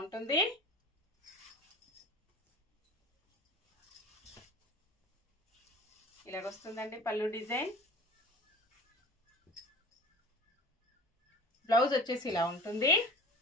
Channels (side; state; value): both; normal; correlation 0.39